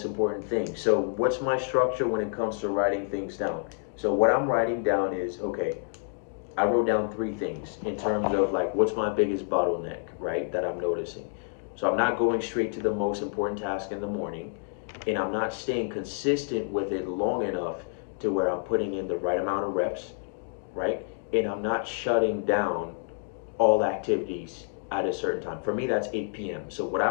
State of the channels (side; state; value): right; silent; digital silence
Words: important thing. So what's my structure when it comes to writing things down? So what I'm writing down is, okay, I wrote down 3 things in terms of like what's my biggest bottleneck, right, that I'm noticing. So I'm not going straight to the most important task in the morning, and I'm not staying consistent with it long enough to where I'm putting in the right amount of reps, right? And I'm not shutting down all activities at a certain time. For me, that's 8 p.m. So what I